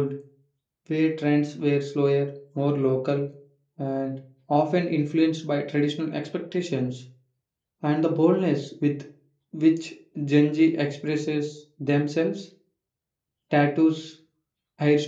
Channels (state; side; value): identical; both; correlation 1.00